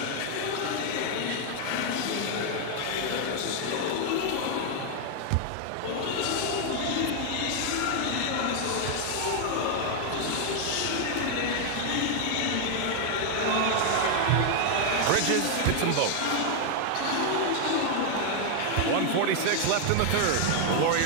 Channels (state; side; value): different; both; correlation 0.00